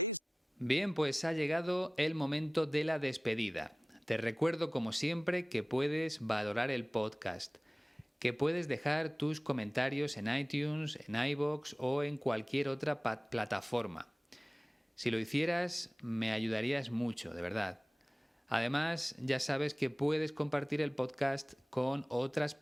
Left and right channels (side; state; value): both; normal; correlation 0.97